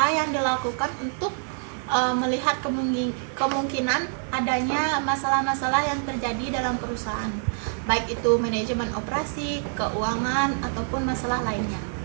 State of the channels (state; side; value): silent; left; 61 dB below the other